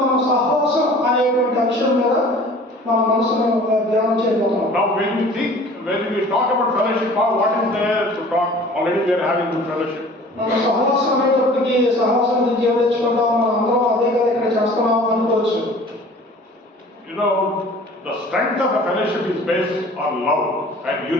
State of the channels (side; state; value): both; normal; correlation 0.47